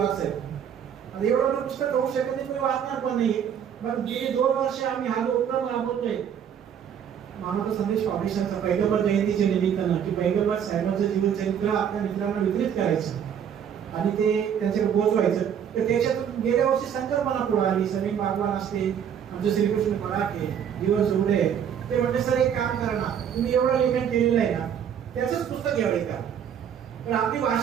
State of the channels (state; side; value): quieter; left; 8.5 dB